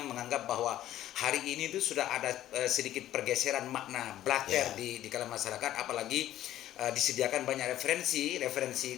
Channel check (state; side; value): quieter; right; 13.0 dB